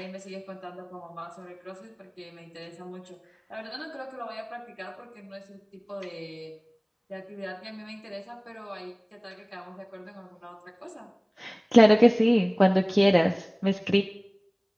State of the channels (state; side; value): identical; both; correlation 1.00